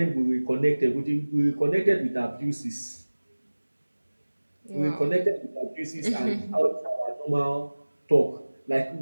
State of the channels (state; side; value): inverted; both; correlation -1.00